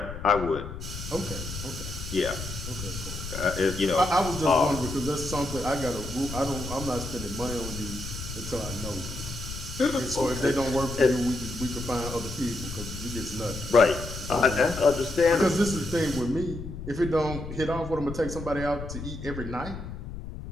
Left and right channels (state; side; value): noise; left; rumble, 9 dB below the sound